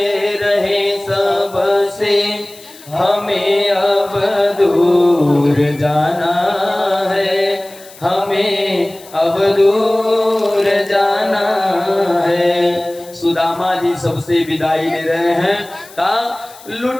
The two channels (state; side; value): noise; left; hiss, 21 dB below the sound